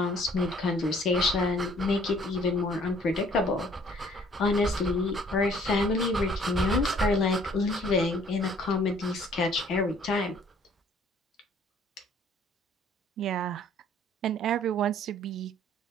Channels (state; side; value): normal; both; correlation 0.58